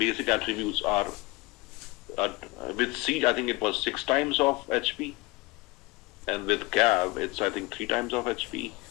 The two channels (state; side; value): quieter; right; 23.0 dB